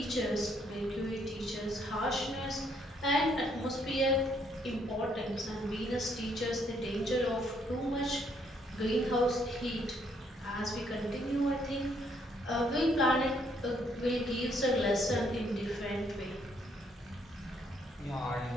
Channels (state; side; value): normal; both; correlation 0.70